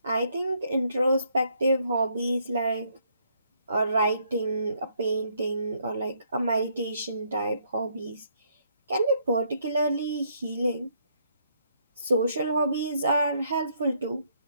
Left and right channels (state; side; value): inverted; both; correlation -0.70